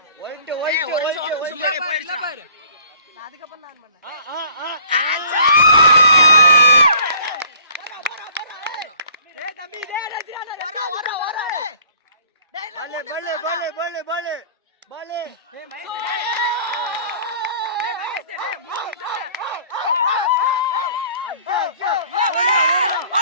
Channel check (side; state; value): both; inverted; correlation -0.53